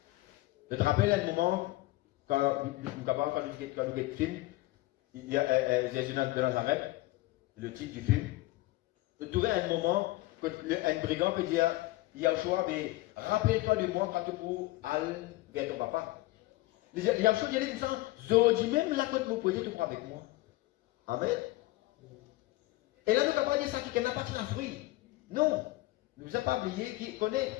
Je te rappelle un moment quand nous avons le film, il y a Jésus de Nazareth, le titre du film. Je trouvais un moment que un brigand peut dire Yahushua, mais rappelle-toi de moi quand tu peux aller vers ton papa. Yahushua dit comme ça, je dis même la côte me poser, tu crois avec moi. Amen. Et là, nous n'avons pas dit ça qui n'a pas de fruit. Non. Nous ne sommes pas oublié qui connaît,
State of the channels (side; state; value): right; quieter; 19.3 dB